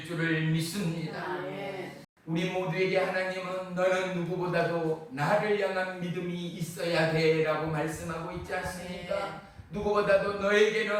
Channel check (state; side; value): identical; both; correlation 1.00